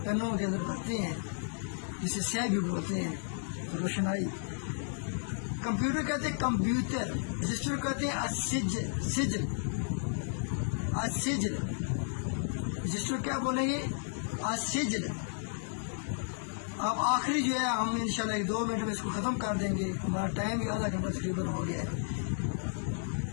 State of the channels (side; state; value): right; silent; digital silence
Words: پینوں کے اندر کرتے ہیں جسے سہ بھی بولتے ہیں، روشنائی. کمپیوٹر کہتے ہیں کمپیوٹر. رجسٹر کہتے ہیں السجل، سجل، السجل. رجسٹر کیا بولیں گے؟ السجل. اب آخری جو ہے ہم انشاءاللہ 1-2 منٹ میں اس کو ختم کر دیں گے، ہمارا ٹائم بھی آدھا گھنٹہ تقریباً ہو گیا ہے.